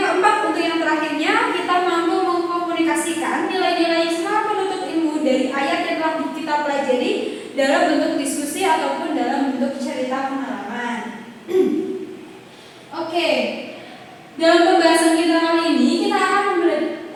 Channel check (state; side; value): identical; both; correlation 1.00